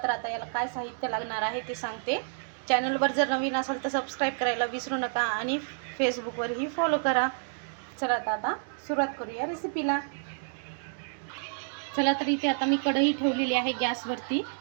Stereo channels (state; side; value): silent; left; digital silence